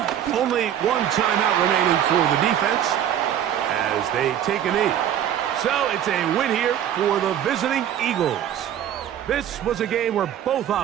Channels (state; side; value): quieter; left; 10.3 dB